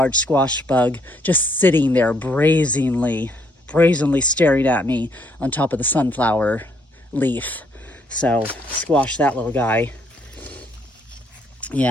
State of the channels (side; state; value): both; normal; correlation 0.69